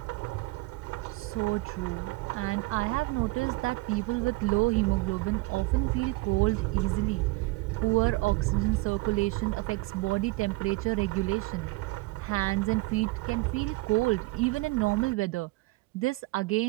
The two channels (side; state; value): left; quieter; 22.7 dB